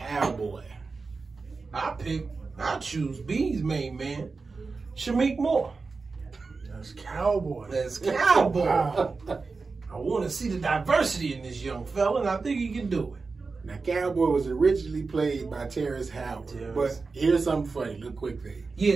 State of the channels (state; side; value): quieter; left; 4.3 dB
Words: I choose B's main man, Shameik Moore. that's Cowboy. That's Cowboy. Wow. I want to see the diversity in this young fella, and I think he can do it. Now, Cowboy was originally played by Terrence Howard. But here's something funny, little quick thing.